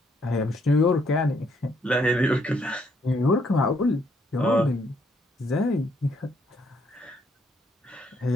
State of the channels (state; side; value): normal; both; correlation 0.71